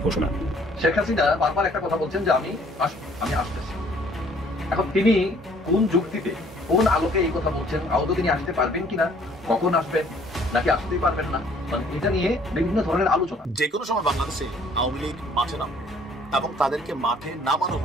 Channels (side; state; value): both; normal; correlation 0.59